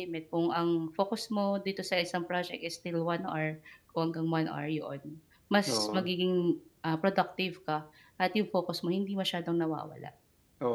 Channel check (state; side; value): identical; both; correlation 1.00